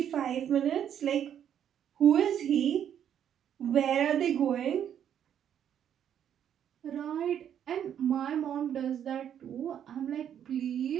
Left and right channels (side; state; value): left; quieter; 9.4 dB